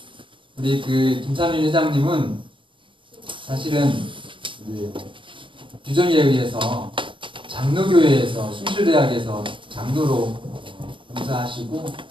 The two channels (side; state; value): left; late; 0.24 ms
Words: 우리 그 김삼일 회장님은 사실은 규정에 의해서 장로교회에서 숭실대학에서 장로로 봉사하시고